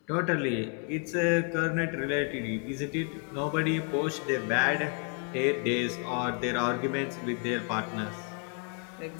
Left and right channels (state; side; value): quieter; right; 39.6 dB